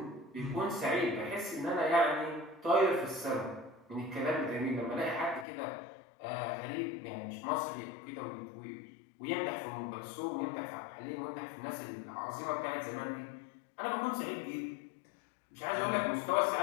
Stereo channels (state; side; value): drops out; right; at 5.5 s